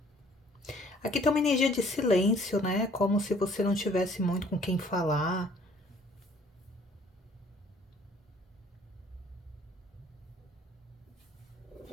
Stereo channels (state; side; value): normal; both; correlation 0.57